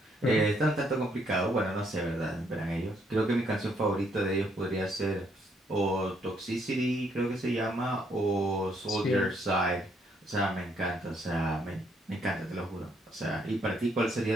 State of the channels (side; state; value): both; normal; correlation 0.71